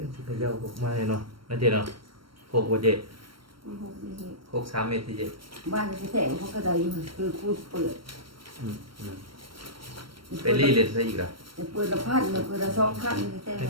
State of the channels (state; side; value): late; left; 0.74 ms